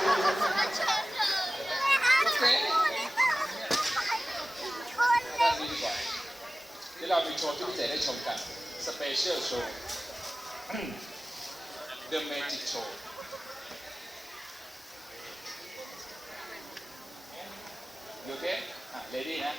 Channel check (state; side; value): normal; both; correlation 0.97